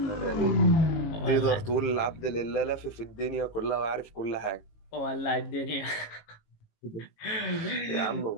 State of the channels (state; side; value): late; right; 18 ms